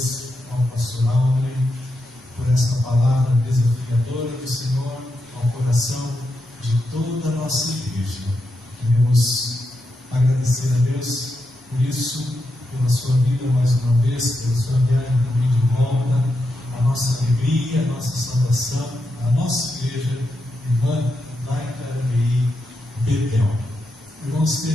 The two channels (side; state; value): both; normal; correlation 0.85